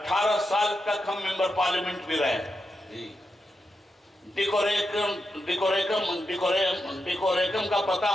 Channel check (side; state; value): both; normal; correlation 0.86